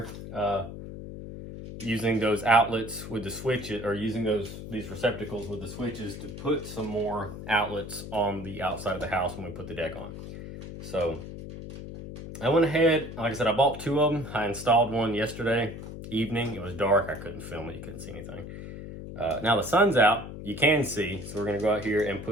using those outlets with the switches, or using these receptacles with the switches to put some more outlets on the outside of the house when we put the deck on. So I went ahead, like I said, I bought 2 of them. I installed one yesterday evening. It was dark. I couldn't film it. You couldn't see anything. Now the sun's out. You can see. So we're going to go out here and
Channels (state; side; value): noise; left; hum, 10 dB below the sound